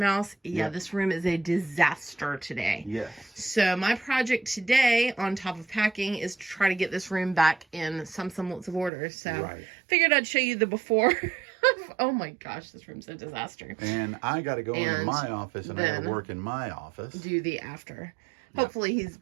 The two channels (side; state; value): left; drops out; at 8.9 s